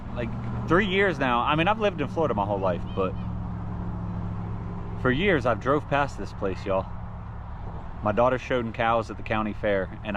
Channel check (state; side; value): identical; both; correlation 1.00